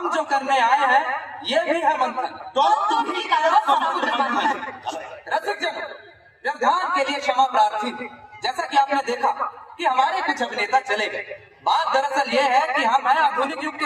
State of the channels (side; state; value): both; identical; correlation 1.00